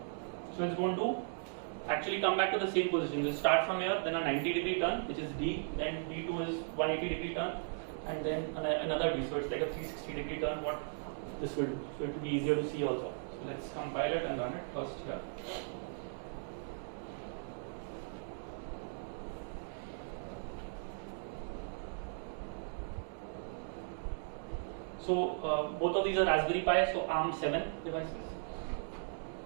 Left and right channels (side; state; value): left; silent; digital silence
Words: So it's going to actually come back to the same position. We'll start from here, then a 90-degree turn, which is D, then D2 is 180-degree turn, and then another D. So it's like a 360-degree turn, what this will do. So it will be easier to see also. So let's compile it and run it first here. So both of these are Raspberry Pi, so ARM7 devices.